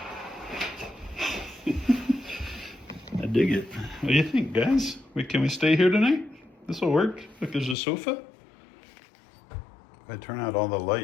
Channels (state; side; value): drops out; right; at 7.8 s